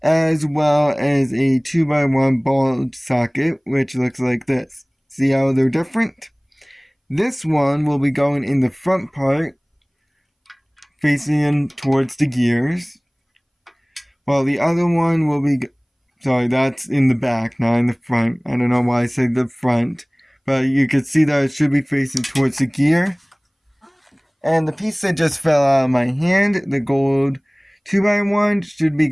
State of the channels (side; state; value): both; identical; correlation 1.00